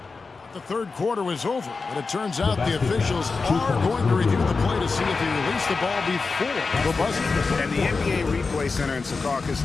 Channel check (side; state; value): right; quieter; 4.3 dB